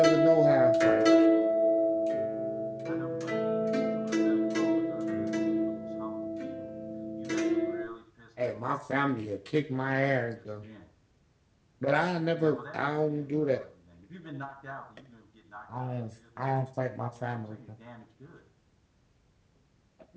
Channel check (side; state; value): both; identical; correlation 1.00